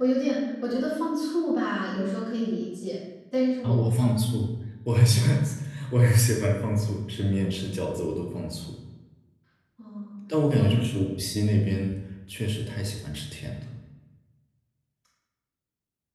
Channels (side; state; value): both; identical; correlation 1.00